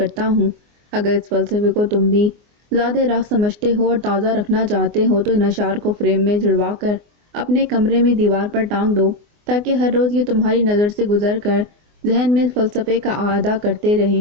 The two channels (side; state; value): left; late; 24 ms